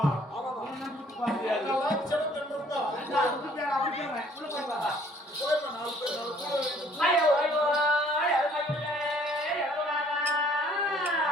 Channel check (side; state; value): both; normal; correlation 0.59